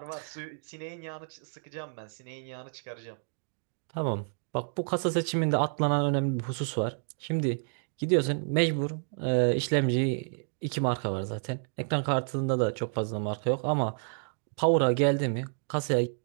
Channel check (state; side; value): silent; left; digital silence